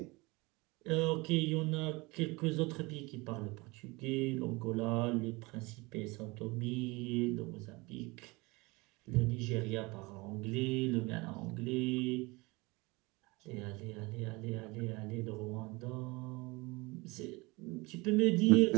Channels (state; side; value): quieter; left; 24.5 dB